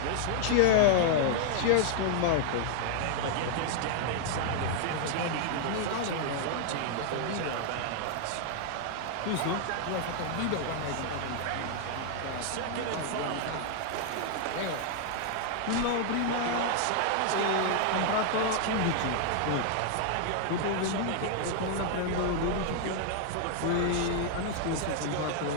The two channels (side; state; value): both; different; correlation 0.00